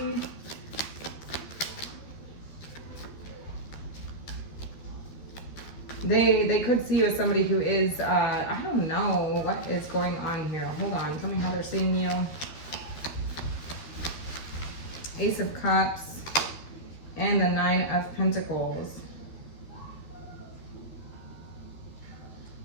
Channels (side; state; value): right; late; 13 ms